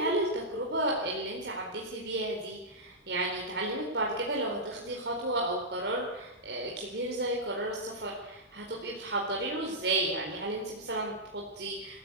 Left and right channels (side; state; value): both; normal; correlation -0.10